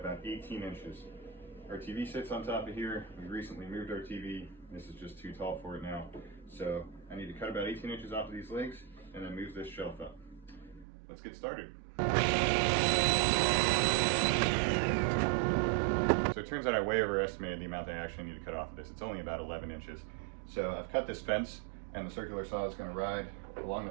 18 inches. Our TV sits on top of here. We recently moved our TV. This is just too tall for it now. So I need to cut about 18 inches off of these legs and then move this shelf up. Let's get started. So it turns out I way overestimated the amount I actually need to cut off of this. It's only about 11 inches. So I've cut this fence, and the circular saw is going to ride along the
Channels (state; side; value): drops out; left; at 10.9 s